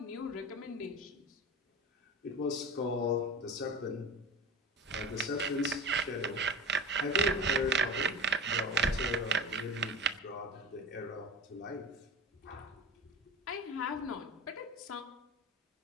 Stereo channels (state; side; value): normal; both; correlation 0.31